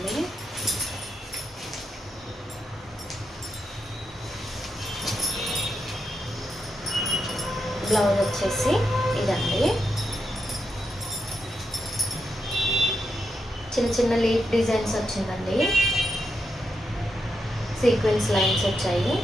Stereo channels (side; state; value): both; normal; correlation 0.84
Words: బ్లౌజ్ వచ్చేసి ఇదండి, చిన్న చిన్న లీఫ్ డిజైన్స్ వచ్చిందండి, సీక్వెన్స్ లైన్స్ వచ్చాయి,